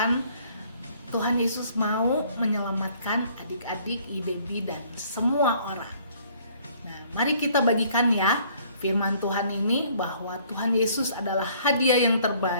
Tuhan Yesus mau menyelamatkan adik-adik, IDB, dan semua orang. Nah, mari kita bagikan ya firman Tuhan ini, bahwa Tuhan Yesus adalah hadiah yang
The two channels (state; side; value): inverted; both; correlation -0.60